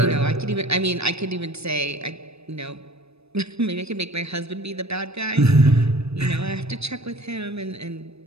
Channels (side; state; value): left; late; 0.79 ms